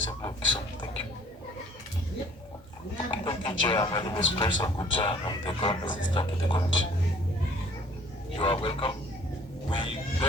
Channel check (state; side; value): normal; both; correlation 0.56